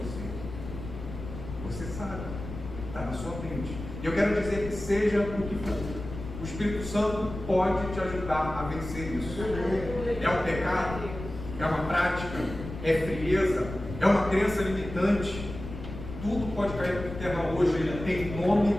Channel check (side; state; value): left; noise; rumble, 10 dB below the sound